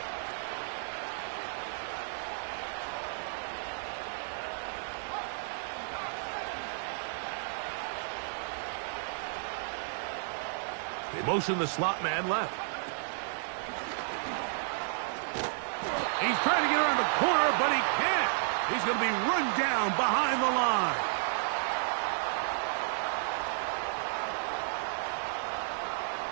They motion the slot man left. He's trying to get around the corner, but he can't. He's going to be run down behind the line.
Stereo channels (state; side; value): silent; left; digital silence